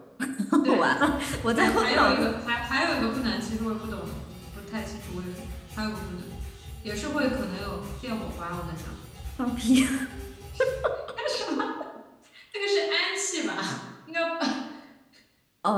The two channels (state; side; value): identical; both; correlation 1.00